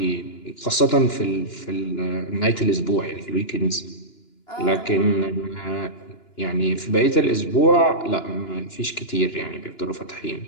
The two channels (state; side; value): late; right; 2.9 ms